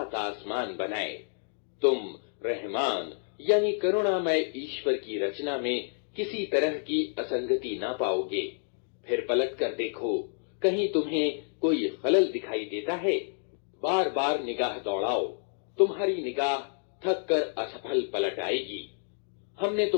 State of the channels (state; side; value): silent; right; digital silence